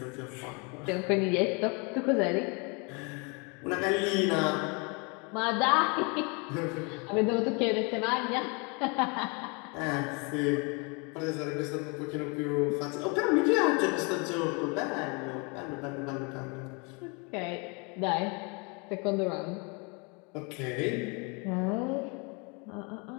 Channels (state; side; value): quieter; right; 31.9 dB